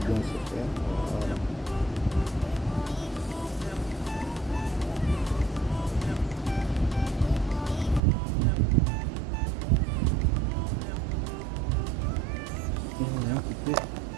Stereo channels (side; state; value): left; drops out; at 8.0 s